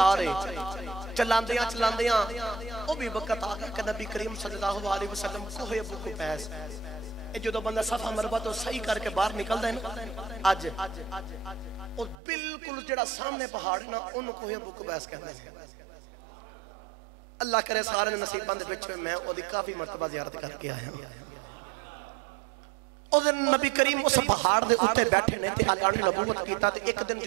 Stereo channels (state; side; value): drops out; left; at 12.2 s